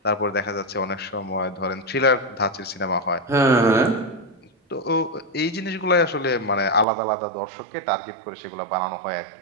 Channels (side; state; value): left; drops out; at 6.9 s